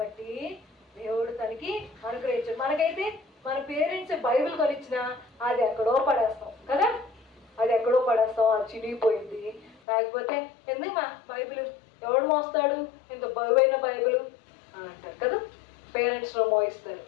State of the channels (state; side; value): drops out; right; at 9.8 s